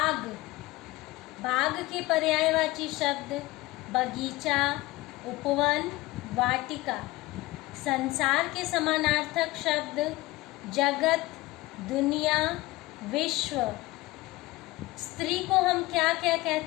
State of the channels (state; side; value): quieter; right; 19.6 dB